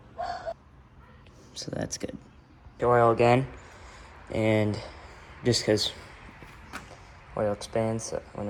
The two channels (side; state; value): both; identical; correlation 1.00